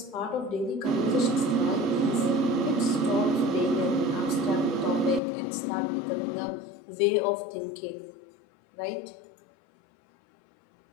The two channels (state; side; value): drops out; right; at 5.2 s